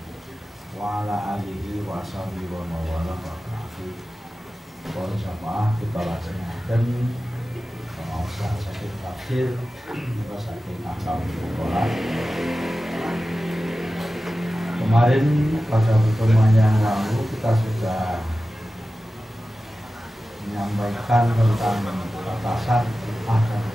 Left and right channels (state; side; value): normal; both; correlation 0.94